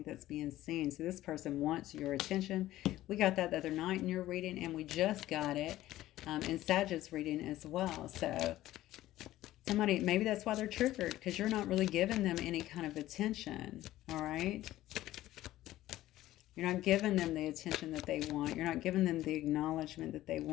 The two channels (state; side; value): quieter; right; 15.0 dB